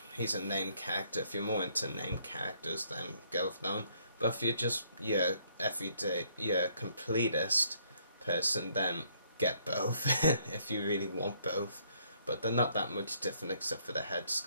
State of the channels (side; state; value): both; inverted; correlation -0.67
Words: he's a named character. If you're more into named characters, then go with that one. But if you're just your everyday, your completist person, then get both if you really want both. But they're not that much different except for the head